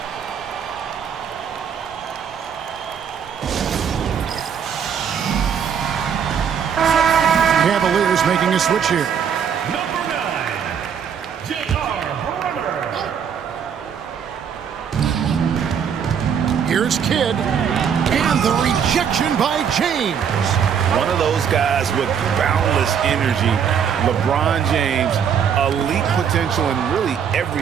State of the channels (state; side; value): quieter; left; 7.7 dB